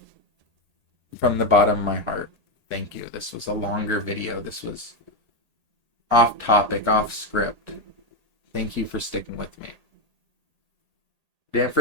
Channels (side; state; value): left; late; 1.8 ms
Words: From the bottom of my heart, thank you. This was a longer video. This was off topic, off script. Thank you for sticking with me. Didn't